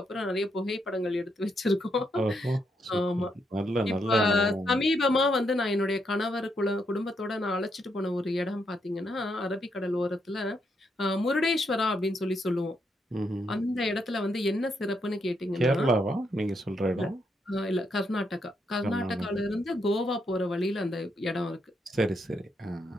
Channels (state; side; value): normal; both; correlation 0.78